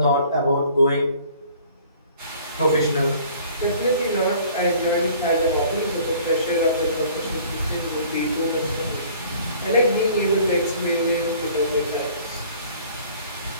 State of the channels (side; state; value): both; inverted; correlation -0.52